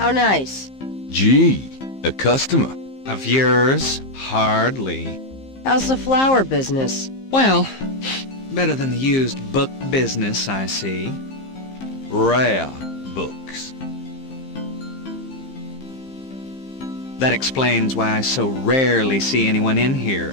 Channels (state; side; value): late; right; 15 ms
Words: nice. Gee, a customer. Of yours? Hardly. How's the flower business? Well, better than the used book business, I see. Rare books. That explains why I so rarely see anyone in here.